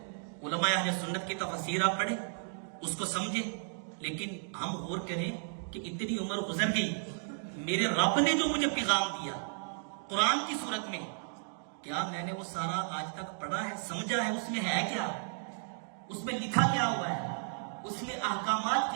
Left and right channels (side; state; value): left; silent; digital silence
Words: علماء اہل سنت کی تفسیر آپ پڑھیں، اس کو سمجھیں۔ لیکن ہم غور کریں کہ اتنی عمر گزر گئی، میرے رب نے جو مجھے پیغام دیا قرآن کی صورت میں، کیا میں نے وہ سارا آج تک پڑھا ہے، سمجھا ہے؟ اس میں ہے کیا؟ اس میں لکھا کیا ہوا ہے؟ اس میں احکامات